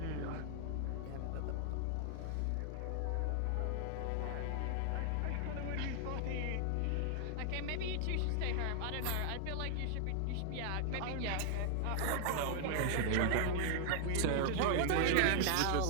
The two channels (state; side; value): different; both; correlation 0.00